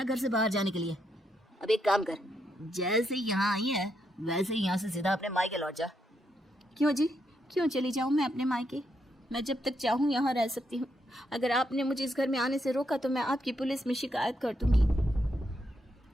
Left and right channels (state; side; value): normal; both; correlation 0.79